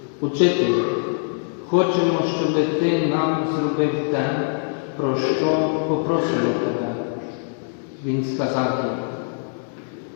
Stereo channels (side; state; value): right; silent; digital silence